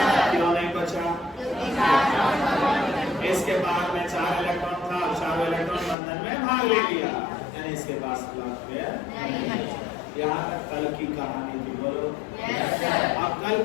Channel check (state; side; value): drops out; right; at 6.0 s